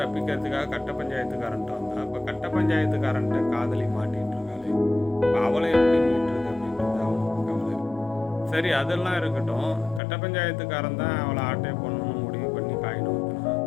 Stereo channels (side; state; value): right; drops out; at 10.0 s